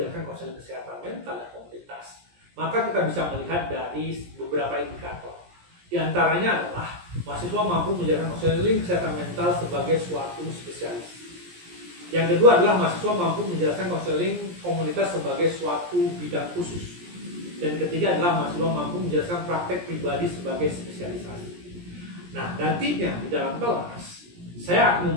konseling kesehatan mental dan komunitas? Maka kita bisa melihat dari beberapa indikator. Di antaranya adalah mahasiswa mampu menjalankan konseling kesehatan mental sebagai suatu spesialis. Yang kedua adalah mahasiswa mampu menjalankan konseling komunitas sebagai suatu bidang khusus. Dan ketiga adalah mahasiswa mampu menjelaskan praktek pribadi sebagai spesialisasi. Nah, nantinya di dalam kelas saya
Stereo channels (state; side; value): late; left; 17 ms